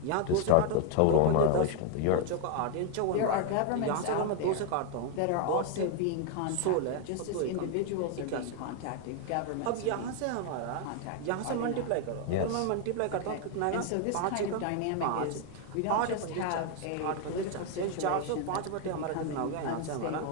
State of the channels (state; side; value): different; both; correlation 0.00